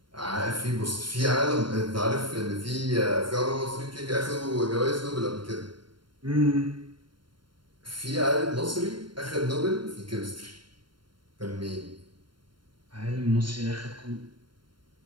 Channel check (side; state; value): left; late; 0.72 ms